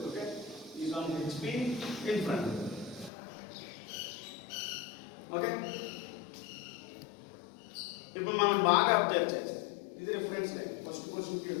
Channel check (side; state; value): right; drops out; at 3.1 s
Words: Okay. Is on HP in front. Okay. ఇప్పుడు మనం బాగా అబ్జర్వ్ చేస్తాం. ఇది రిఫరెన్స్ లైన్. ఫస్ట్ క్వశ్చన్ కి